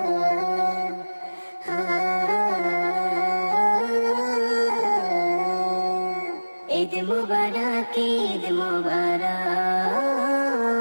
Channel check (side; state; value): both; inverted; correlation -1.00